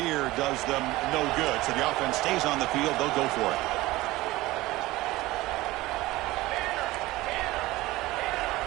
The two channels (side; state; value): left; quieter; 18.7 dB